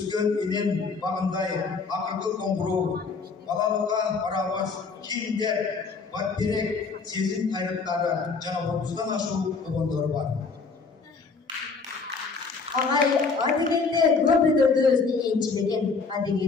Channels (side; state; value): right; quieter; 4.7 dB